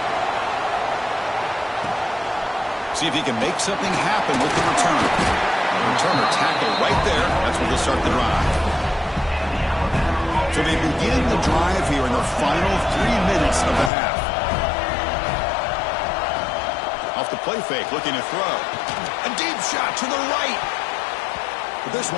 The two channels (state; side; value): drops out; right; at 13.9 s